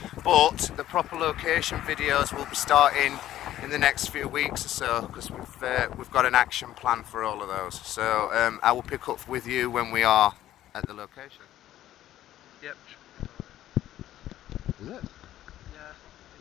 But the proper location videos will be starting in the next few weeks or so because we've got an action plan for all of those. So I will pick up with you when we are at the location. Yep. Is it? Yeah.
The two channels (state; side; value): quieter; right; 13.1 dB